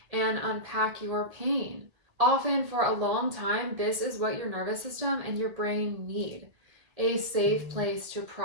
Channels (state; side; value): late; left; 1.8 ms